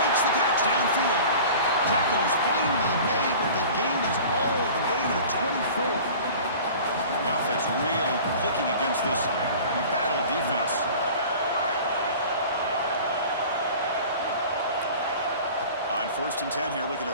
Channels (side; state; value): both; inverted; correlation -0.42